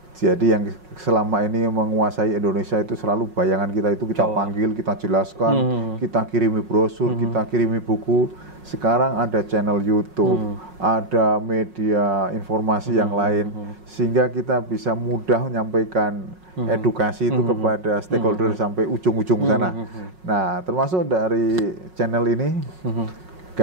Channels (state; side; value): late; left; 5.5 ms